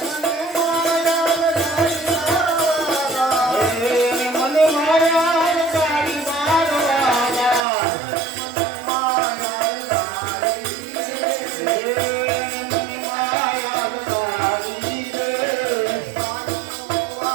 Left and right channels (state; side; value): drops out; left; at 7.6 s